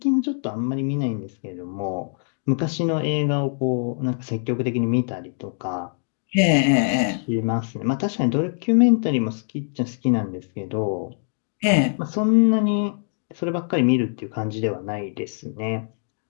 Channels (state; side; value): silent; right; digital silence